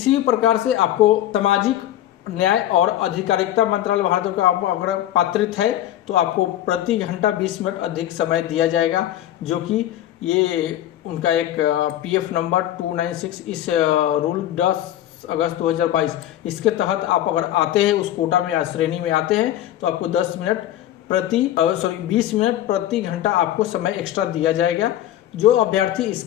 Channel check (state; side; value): quieter; right; 12.7 dB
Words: भी प्रकार से आपको सामाजिक न्याय और अधिकारिता मंत्रालय भारत का अगर पात्रित है तो आपको प्रति घंटा 20 मिनट अधिक समय दिया जाएगा, जो कि ये उनका एक PF नंबर 296 इस रूल 10 अगस्त 2022 इसके तहत आप अगर आते हैं उस कोटा में या श्रेणी में आते हैं तो आपको 20 मिनट प्रति घंटा आपको समय एक्स्ट्रा दिया जाएगा जो अभ्यर्थी